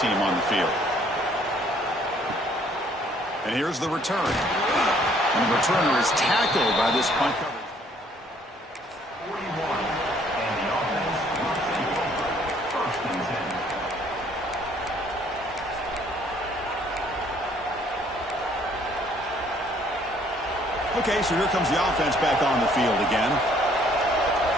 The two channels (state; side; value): normal; both; correlation 0.62